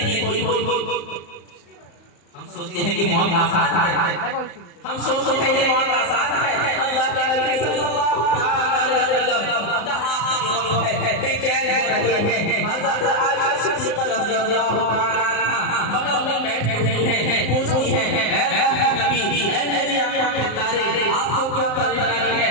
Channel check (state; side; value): late; right; 35 ms